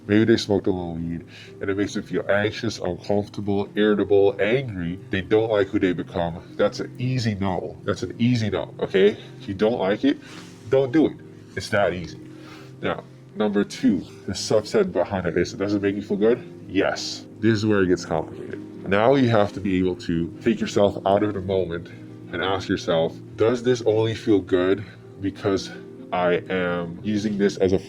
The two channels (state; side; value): identical; both; correlation 1.00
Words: maybe they smoked a little weed, and it makes them feel anxious, uncomfortable, irritable, angry. They don't like who they become. That's an easy no. Okay? If you don't like it, don't do it. It's that easy. Now, number two, the subset behind it is, does it make you feel good? Yes. This is where it gets complicated. Now you have to be able to take yourself out of the moment and ask yourself, does this only feel good because I am using this as a